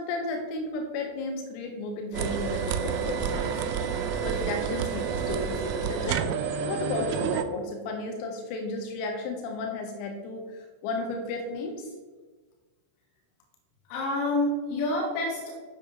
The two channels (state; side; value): late; right; 28 ms